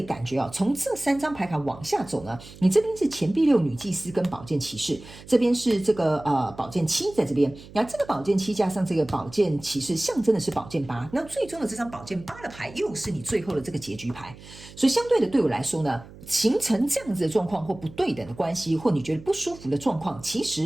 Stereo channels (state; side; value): noise; right; hum, 19 dB below the sound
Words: 感觉从这3张牌卡往下走呢，你这边是钱币6女祭司跟宝剑骑士，这边是这个宝剑7在这边，然后这个宝剑7加上这个宝剑骑士象征的是宝剑8，那最终的这张宝剑8的牌又是你最后的这个结局牌，所以相对的对我来说呢，形成这样子的状况或不对等的关系，或你觉得不舒服的状况，其